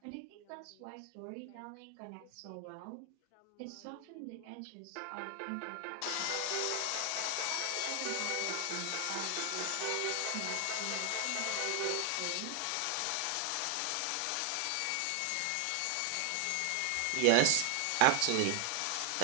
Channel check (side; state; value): both; different; correlation 0.00